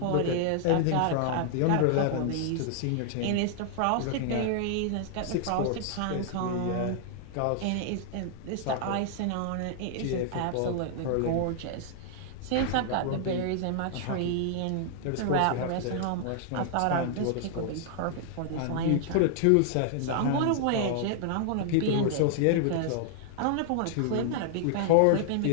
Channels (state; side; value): different; both; correlation -0.01